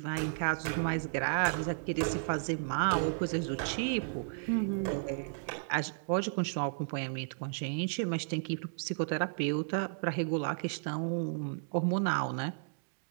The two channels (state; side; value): silent; left; digital silence